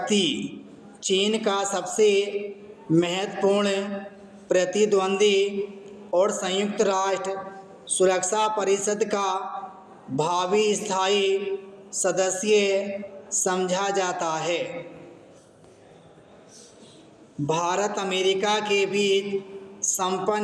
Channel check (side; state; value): both; identical; correlation 1.00